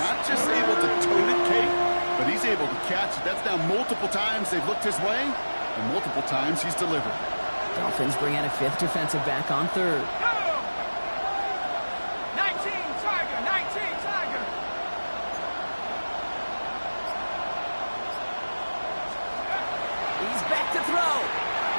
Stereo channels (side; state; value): both; inverted; correlation -1.00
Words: just able to tote it, Kate, but he's able to catch it. That's now multiple times they've looked his way, and multiple times he's delivered. Dolphins bring out a 5th defensive back on 3rd. He's back to throw.